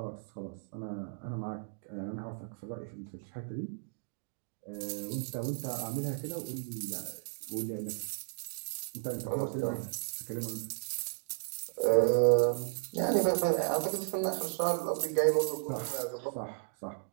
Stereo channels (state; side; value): silent; left; digital silence